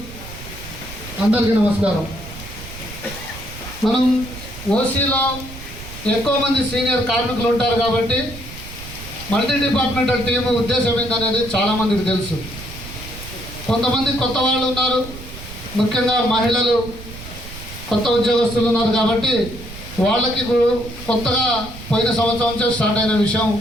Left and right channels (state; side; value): noise; right; rumble, 13 dB below the sound